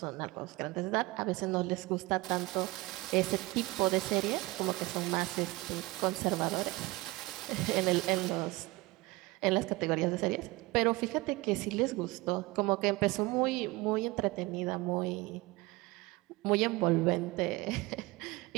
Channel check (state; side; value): quieter; left; 21.5 dB